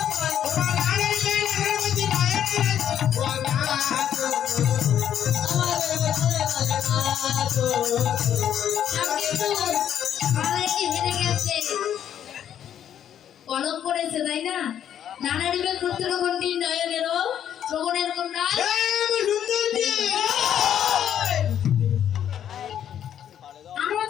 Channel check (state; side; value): quieter; right; 9.9 dB